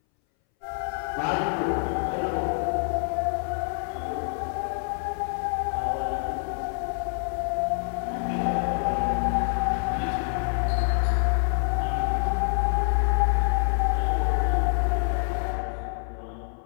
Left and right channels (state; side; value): silent; right; 61 dB below the other